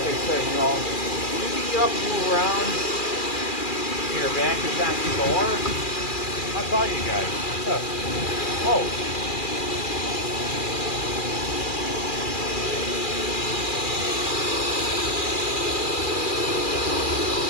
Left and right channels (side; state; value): right; late; 2.4 ms